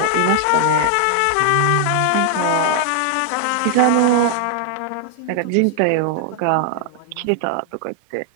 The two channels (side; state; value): both; different; correlation 0.00